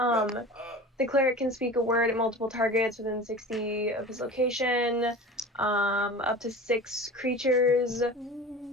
cleric can speak a word at multiple targets within 60 of his location. Up to 6 creatures.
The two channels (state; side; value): normal; both; correlation 0.35